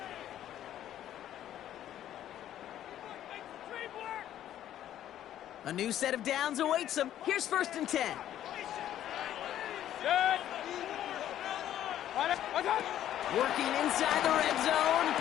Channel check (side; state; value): right; quieter; 11.7 dB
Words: A new set of downs awaits them. Here's 1st and 10. Working inside the red zone.